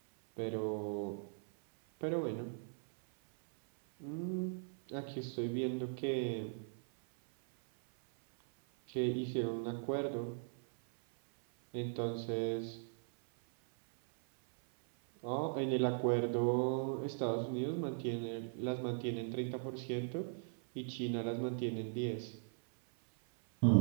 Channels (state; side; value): silent; left; 52 dB below the other